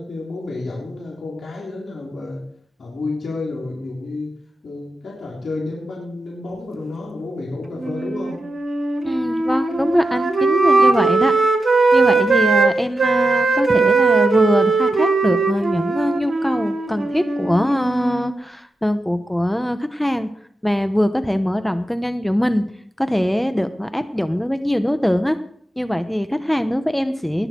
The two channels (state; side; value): normal; both; correlation 0.90